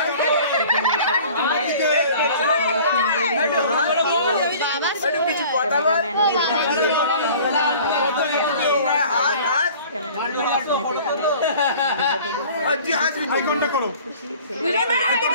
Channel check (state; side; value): inverted; both; correlation -0.47